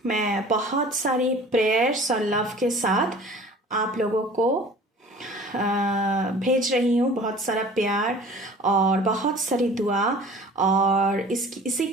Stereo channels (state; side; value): normal; both; correlation 0.45